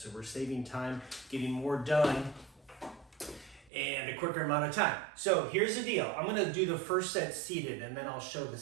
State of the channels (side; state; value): left; drops out; at 3.7 s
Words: we're saving time, getting more done and a quicker amount of time. So here's the deal. I'm gonna do the first set seated and then I'll show the